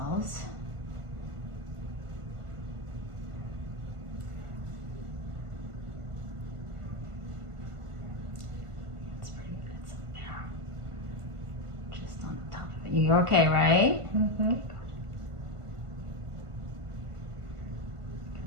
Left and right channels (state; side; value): late; left; 1.5 ms